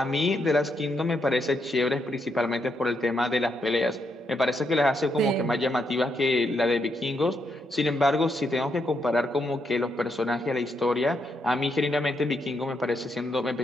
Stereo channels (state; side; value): normal; both; correlation 0.79